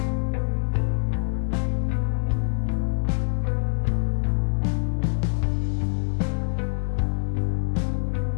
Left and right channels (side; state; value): right; silent; 57 dB below the other